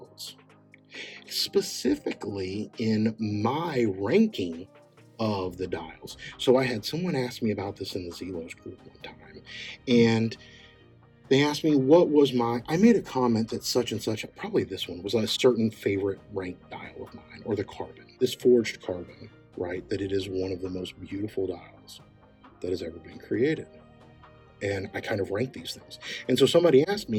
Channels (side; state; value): both; identical; correlation 1.00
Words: specifically in my ranking of the dials. So I had someone ask me about this in the Zelos group one time, and they asked me what was I made a comment that such and such, probably this one, was a certain favorite ranked dial of mine, or the carbon, this forged carbon, right? That it is one of the most beautiful dials that has ever been created. And I kind of rank these things. And so somebody asked